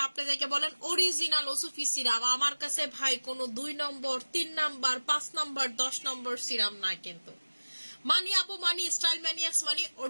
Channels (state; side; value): inverted; both; correlation -1.00